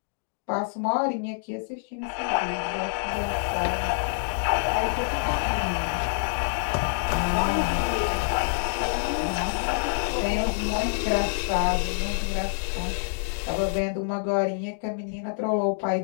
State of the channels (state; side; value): silent; right; digital silence